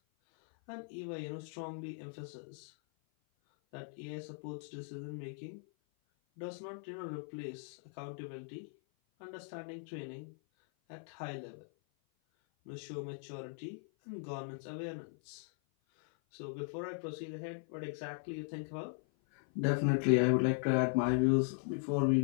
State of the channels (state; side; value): silent; right; 52 dB below the other